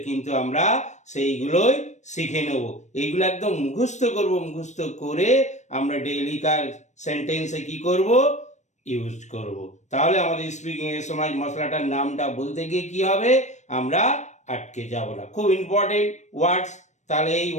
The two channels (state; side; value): late; right; 0.34 ms